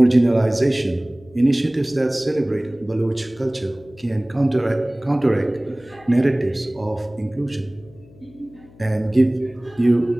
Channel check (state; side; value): noise; left; hum, 25 dB below the sound